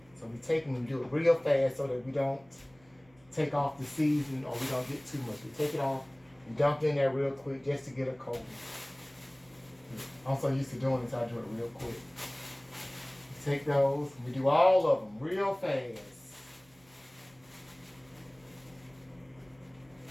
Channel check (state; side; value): noise; right; hum, 30 dB below the sound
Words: So we take it and we do it real fast so that we don't take off the seasoning or we don't get too much. We take it off and dump it in there real quick just to get a coating. I'm so used to doing this, I do it real quick. We take those and we do all of them real fast.